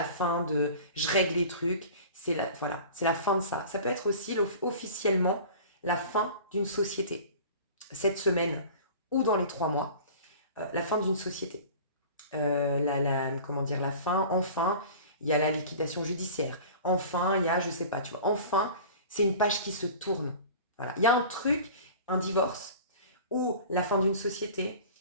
fin de je règle les trucs, c'est la fin de ça. Ça peut être aussi officiellement la fin d'une société. Cette semaine ou dans les 3 mois, la fin d'une société. La fin, enfin, il y a la liquidation judiciaire. Enfin, il y a, je sais pas, tu vois, enfin, c'est une page qui se tourne. Voilà. Il y a un truc, un divorce, ou la fin d'une société,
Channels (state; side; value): inverted; both; correlation -0.40